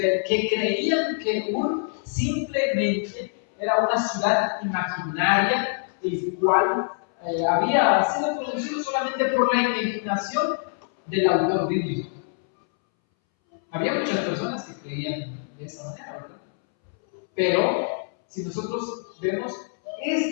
creían que Ur simplemente era una ciudad imaginaria, el cual había sido producido solamente por la imaginación del autor bíblico. Había muchas personas que creían de esa manera, ¿verdad? Pero si nosotros vemos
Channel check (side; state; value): right; silent; 62 dB below the other